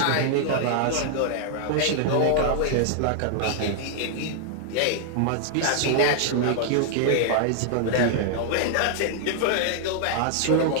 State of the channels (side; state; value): both; different; correlation 0.00